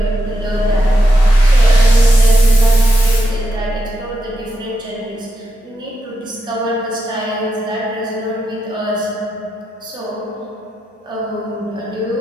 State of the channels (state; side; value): normal; both; correlation 0.85